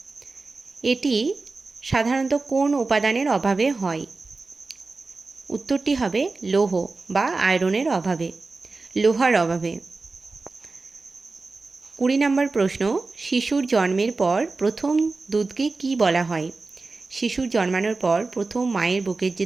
এটি সাধারণত কোন উপাদানের অভাবে হয়? উত্তরটি হবে লৌহ বা আয়রনের অভাবে, লোহার অভাবে। 20 নম্বর প্রশ্ন, শিশুর জন্মের পর প্রথম দুধকে কি বলা হয়? শিশুর জন্মানোর পর প্রথম মায়ের বুকের যে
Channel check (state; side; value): quieter; left; 3.7 dB